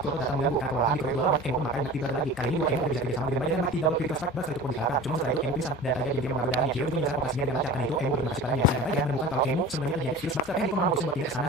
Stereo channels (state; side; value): normal; both; correlation 0.37